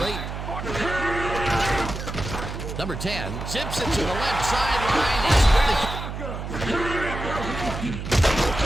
8. Number 10 zips it to the left sideline.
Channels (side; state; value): right; noise; hum, 7 dB below the sound